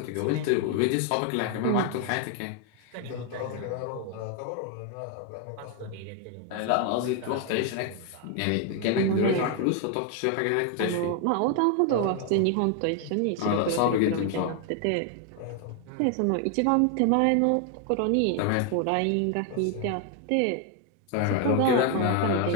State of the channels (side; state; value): both; different; correlation 0.00